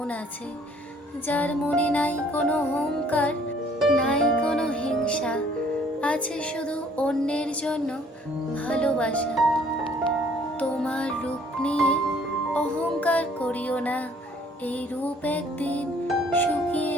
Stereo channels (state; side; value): normal; both; correlation 0.59